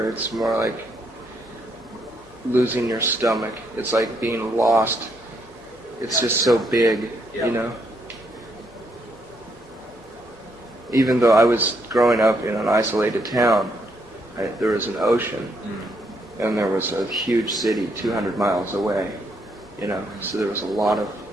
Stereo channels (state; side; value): normal; both; correlation 0.74